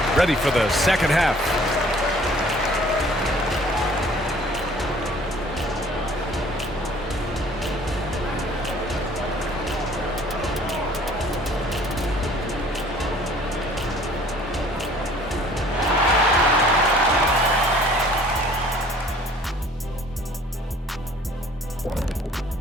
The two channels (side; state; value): both; normal; correlation 0.54